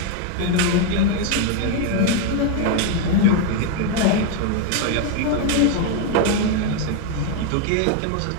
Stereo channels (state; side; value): different; both; correlation 0.01